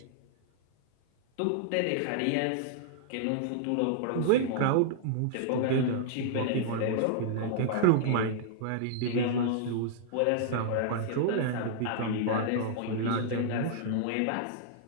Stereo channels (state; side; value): different; both; correlation -0.01